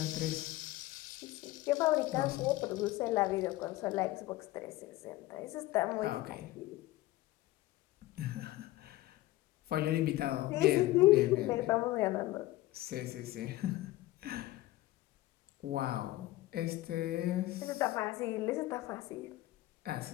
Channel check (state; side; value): quieter; right; 17.1 dB